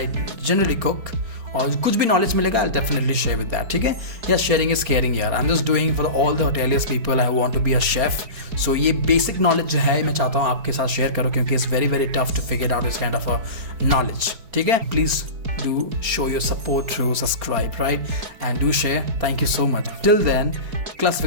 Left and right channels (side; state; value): left; late; 4.3 ms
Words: generally cook, और कुछ भी नॉलेज मिलेगा I definitely share with that. ठीक है, या शेयरिंग इज केयरिंग यार. I am just doing for all the hoteliers people I want to be a chef. So ये basic knowledge जो है मैं चाहता हूँ आपके साथ शेयर करूँ, क्योंकि it's very very tough to figure out this kind of a knowledge. ठीक है, please do show your support through subscribe, right, and do share. Thank you so much. Till then,